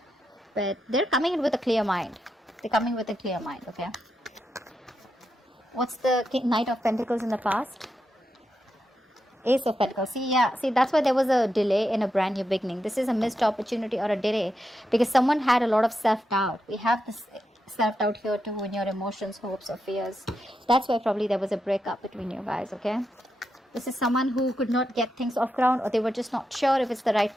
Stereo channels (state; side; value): normal; both; correlation 0.86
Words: But they're coming in with a clear mind. They're coming with a clear mind, okay? What's the Knight of Pentacles in the past? Ace of Pentacles. See, that's why there was a delay in a brand new beginning. This is a missed opportunity or a delay because someone had a lot of self-doubt. We have this self-doubt here too in your emotions, hopes, or fears. That's why probably there was a breakup between you guys, okay? This is someone who could not get things off ground, or they were just not sure if it's the right